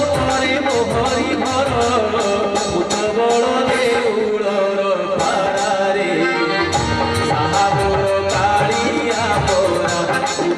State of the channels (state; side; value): identical; both; correlation 1.00